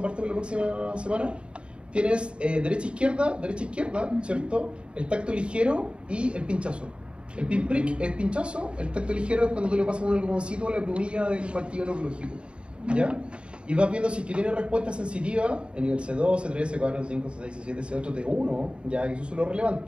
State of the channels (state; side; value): late; left; 0.055 ms